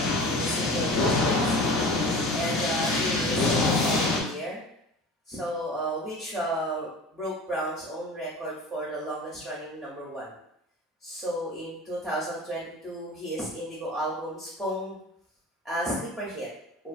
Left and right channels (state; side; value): normal; both; correlation 0.37